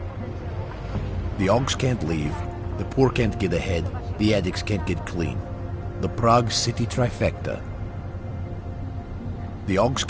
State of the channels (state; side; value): identical; both; correlation 1.00